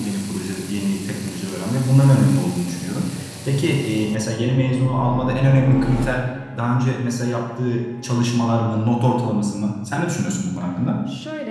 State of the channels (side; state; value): both; identical; correlation 1.00